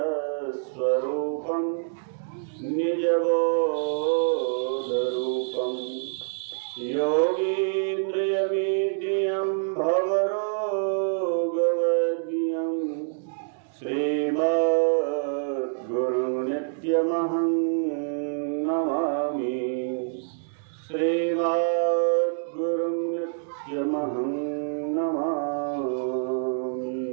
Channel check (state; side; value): silent; left; digital silence